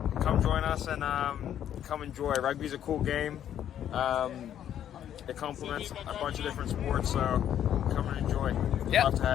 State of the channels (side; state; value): right; quieter; 10.3 dB